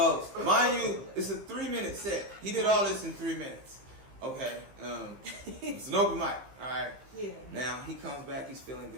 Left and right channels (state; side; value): late; left; 15 ms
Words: mind you, it's a 3-minute set. He did all this in 3 minutes. Okay. It's an open mic. All right. Yeah. Now he comes back. He's feeling